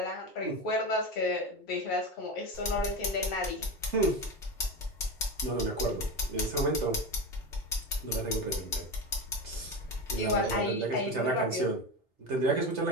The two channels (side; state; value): both; normal; correlation 0.21